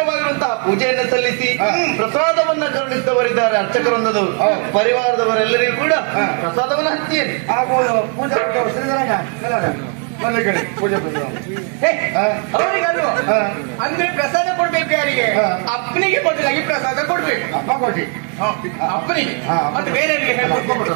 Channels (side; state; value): left; quieter; 39.8 dB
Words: ಪೂಜೆಯನ್ನು ಸಲ್ಲಿಸಿ ಪ್ರಸಾದವನ್ನ ಕರುಣಿಸಿದವರಿದ್ದಾರೆ ಅರ್ಚಕರೊಂದದವರು ಪರಿವಾರದವರೆಲ್ಲರಿಗೂ ಕೂಡ ಪ್ರಸಾದವನ್ನು ಹಂಚಿಯೇನೆ ಪೂಜೆ ಅವರಿಗಲ್ವ ಅಂದ್ರೆ ಪ್ರಸಾದ ಕೊಡ್ಬೇಕು ಯಾರಿಗೆ ಅಪ್ಪನಿಗೆ ಬದಲಾಗಿ ಪ್ರಸಾದ ಕೊಡ್ಬೇಕು ಅಪ್ಪ ಕೊಟ್ಟಿ ಅಪ್ಪನಿಗೆ ಮತ್ತೆ ಬೇರೆ